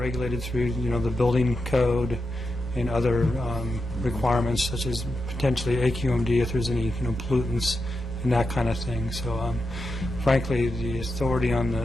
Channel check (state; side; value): normal; both; correlation 0.88